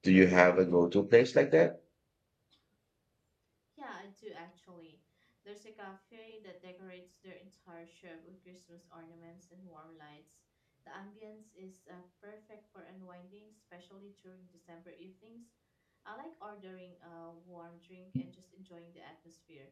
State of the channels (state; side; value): identical; both; correlation 1.00